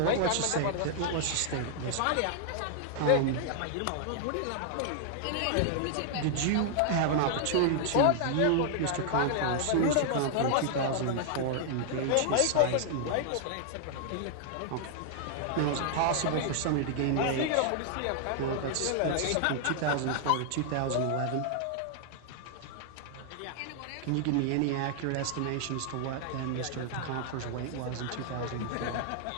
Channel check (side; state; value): both; different; correlation -0.01